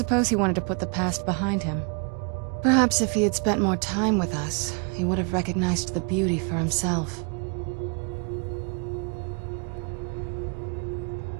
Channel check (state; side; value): quieter; left; 36.9 dB